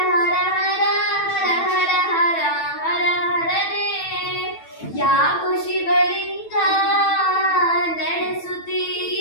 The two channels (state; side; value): late; right; 9.1 ms